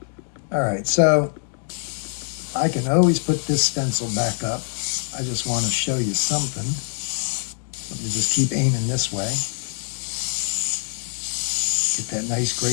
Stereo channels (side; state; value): right; silent; digital silence